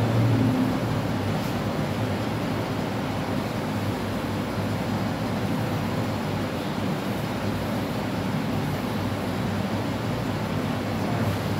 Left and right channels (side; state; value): both; identical; correlation 1.00